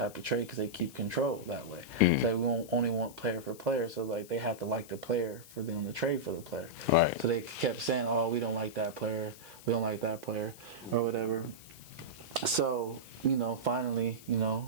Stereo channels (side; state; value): left; noise; hiss, 20 dB below the sound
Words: of trade because they keep control that way. So we only want player for player. So like they have to like the player for them to trade for the player. Right. So they kept saying, oh, we don't like that player. We don't like that player or whatever. So, finally,